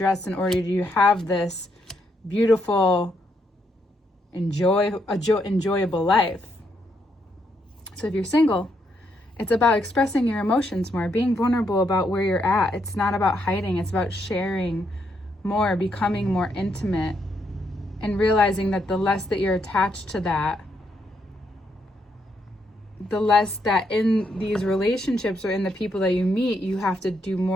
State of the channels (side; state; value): both; normal; correlation 0.77